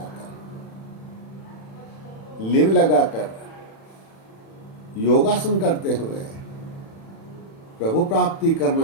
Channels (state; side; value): late; right; 36 ms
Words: लिव लगाकर, योगासन करते हुए प्रभु प्राप्ति करना